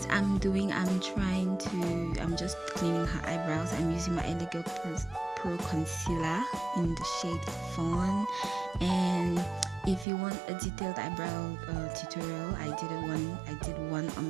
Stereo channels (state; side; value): drops out; left; at 10.1 s